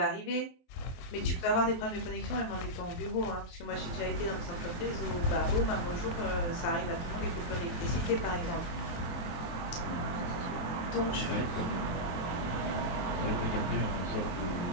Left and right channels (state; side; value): late; right; 23 ms